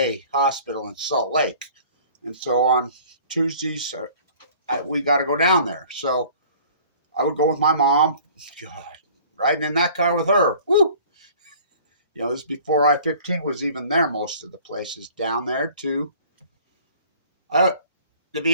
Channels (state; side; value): inverted; both; correlation -0.50